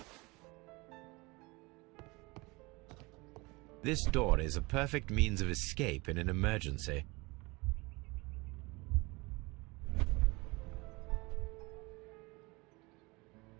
This door is a perfect means of escape in an emergency.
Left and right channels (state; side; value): quieter; left; 24.6 dB